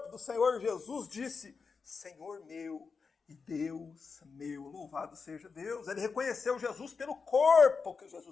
do Senhor Jesus, disse, Senhor meu e Deus meu, louvado seja Deus. Ele reconheceu Jesus pelo corpo que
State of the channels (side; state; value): right; quieter; 5.1 dB